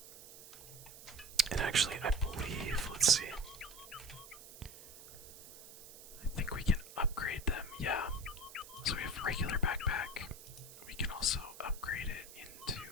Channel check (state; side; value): noise; right; hiss, 16 dB below the sound